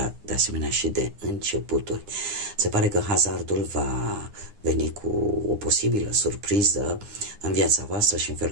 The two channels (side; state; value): left; late; 9.8 ms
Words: de asemenea și de începuturi. Se pare că hazardul va veni cu o posibilă surpriză în viața voastră și în